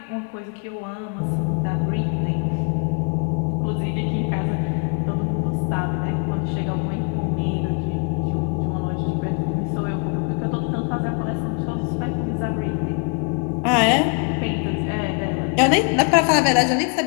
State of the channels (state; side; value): quieter; right; 36.5 dB